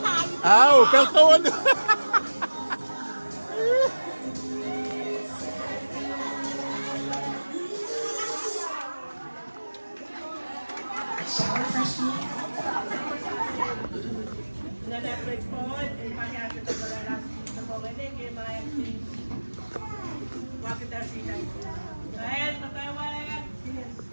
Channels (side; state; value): both; inverted; correlation -1.00